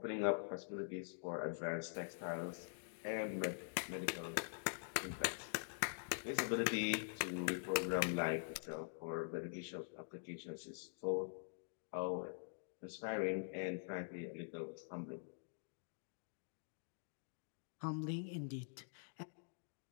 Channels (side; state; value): right; silent; digital silence